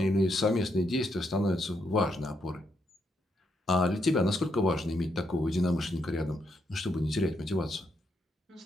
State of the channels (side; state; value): both; normal; correlation 0.78